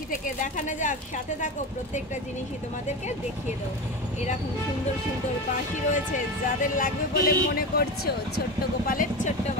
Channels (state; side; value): normal; both; correlation 0.23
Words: থেকে দেখানো যাক, সাথে থাকো, প্রত্যেকটা জিনিসই তোমাদেরকে দেখিয়ে দেবো। এরকম সুন্দর সুন্দর বাঁশি রয়েছে, যাদের লাগবে বলে মনে করছো ছোট্ট গোপালের ছোট্ট